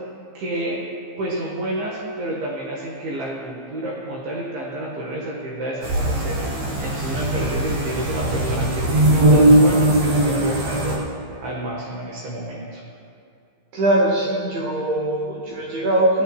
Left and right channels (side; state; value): left; late; 15 ms